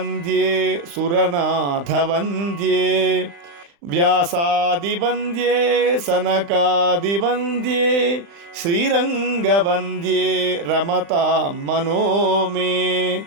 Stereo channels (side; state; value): left; late; 35 ms